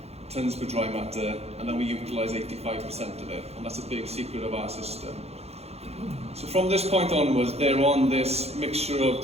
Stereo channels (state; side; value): late; left; 0.30 ms